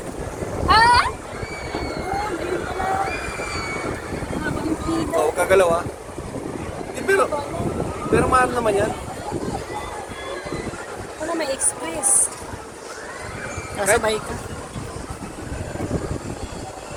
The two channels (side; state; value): both; identical; correlation 1.00